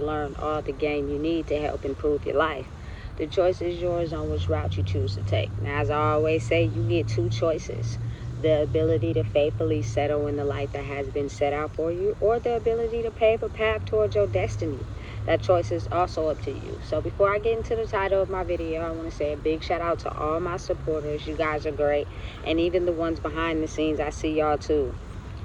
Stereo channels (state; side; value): identical; both; correlation 1.00